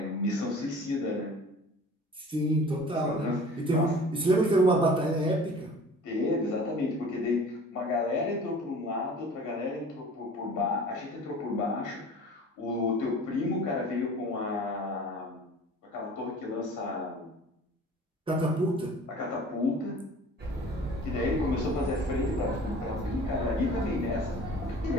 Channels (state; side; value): normal; both; correlation 0.44